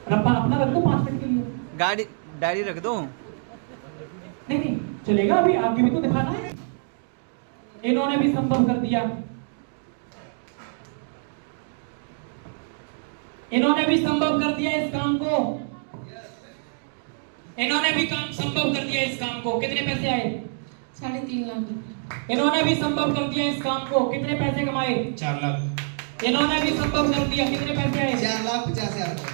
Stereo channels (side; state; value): left; silent; digital silence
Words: रब्बा अपना रख दो 5 मिनट के लिए। गाड़ी डायरी रख दो। नहीं नहीं चलेगा, अभी आगे भी तो दिखाना है। इन्होंने भी संभव कर दिया, इन्होंने भी संभव कर दिया इस काम को, इन्होंने भी काम संभव कर दिया इस काम को। कितने पैसे आए? 3.5 लाख। इन्होंने भी संभव कर दिया इस काम को। कितने पैसे कमाए? 4 लाख। इन्होंने भी संभव कर दिया। कितने पैसे आए? 4,50,000।